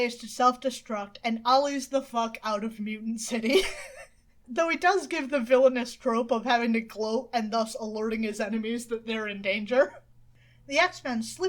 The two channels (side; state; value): both; identical; correlation 1.00